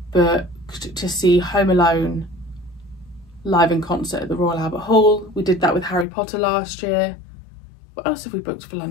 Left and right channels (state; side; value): drops out; right; at 6.1 s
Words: booked to see Home Alone live in concert at the Royal Albert Hall. We did that with Harry Potter last year. What else have we booked for